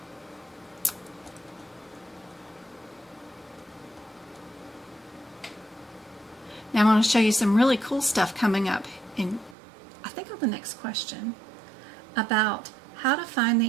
Now I'm going to show you some really cool stuff coming up in, I think, on the next question about how to find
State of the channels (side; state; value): left; drops out; at 9.6 s